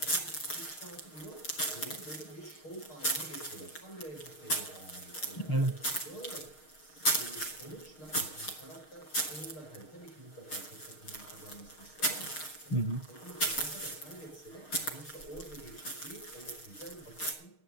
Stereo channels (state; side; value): late; right; 6.5 ms